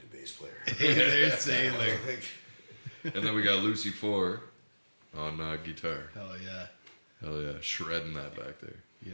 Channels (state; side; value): inverted; both; correlation -1.00